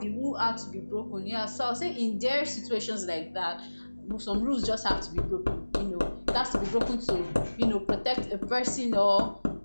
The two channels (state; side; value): inverted; both; correlation -1.00